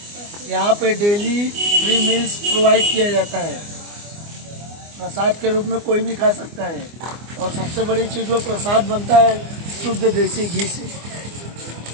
यहाँ पे डेली फ्री मील्स प्रोवाइड किया जाता है। प्रसाद के रूप में कोई भी खा सकता है और सबसे बड़ी चीज़ वो प्रसाद बनता है शुद्ध देसी घी से।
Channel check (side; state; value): left; late; 24 ms